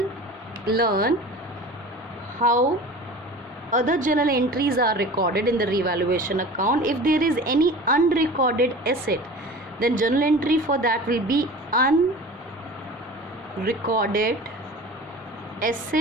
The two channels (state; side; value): normal; both; correlation 0.38